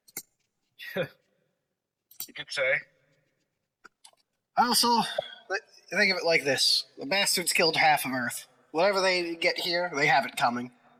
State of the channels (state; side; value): identical; both; correlation 1.00